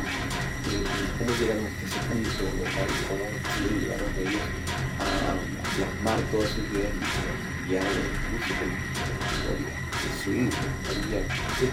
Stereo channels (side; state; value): both; identical; correlation 1.00